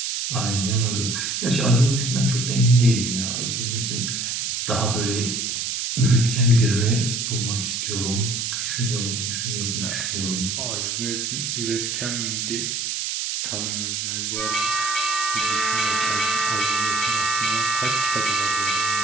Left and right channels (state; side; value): noise; right; hiss, 2 dB below the sound